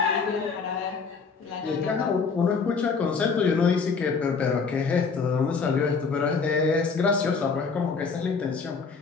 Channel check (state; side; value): quieter; right; 5.1 dB